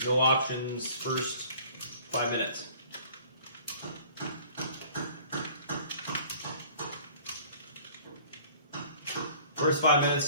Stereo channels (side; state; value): both; inverted; correlation -0.50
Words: No options first 5 minutes. First 5